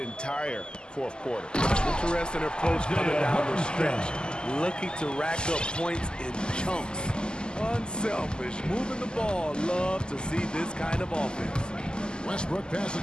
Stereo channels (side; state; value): right; late; 0.047 ms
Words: fourth quarter. Interesting approach coming down the stretch, looking to rack up points in chunks. Unselfish, moving the ball. Love to see this kind of offense. Westbrook passes